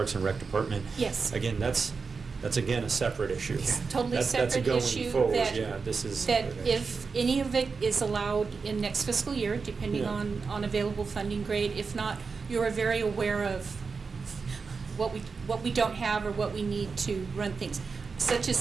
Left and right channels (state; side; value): quieter; left; 4.9 dB